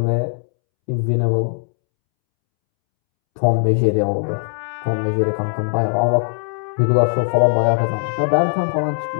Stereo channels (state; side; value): silent; right; 66 dB below the other